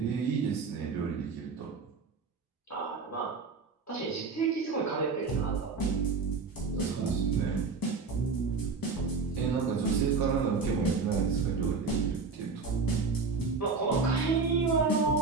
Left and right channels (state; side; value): quieter; left; 4.6 dB